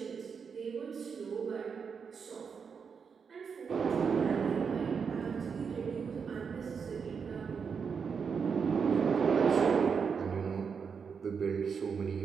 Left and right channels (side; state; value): left; quieter; 6.1 dB